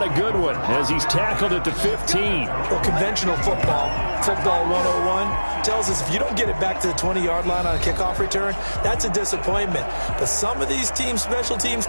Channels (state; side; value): inverted; both; correlation -1.00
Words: a good one, as he's tackled at the 15. Well, conventional football 101, tells us if you don't get it back to the 20-yard line on a kickoff return, that's a disappointment. But some of these teams, special teams